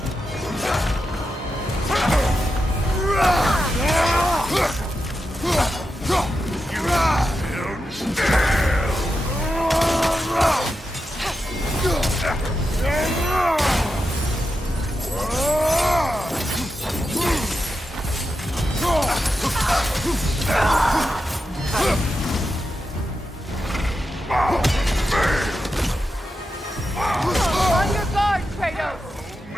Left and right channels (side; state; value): both; normal; correlation 0.88